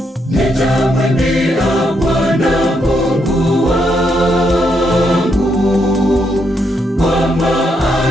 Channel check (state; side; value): normal; both; correlation 0.78